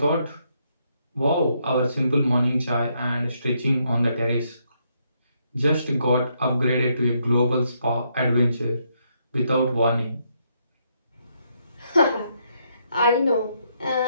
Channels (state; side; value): inverted; both; correlation -0.76